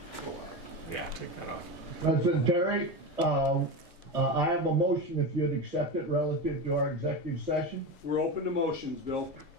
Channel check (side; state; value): both; normal; correlation 0.21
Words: Yeah, take that off. President Terry, I have a motion if you'd accept it relative to our executive session. We're open to motions, Bill.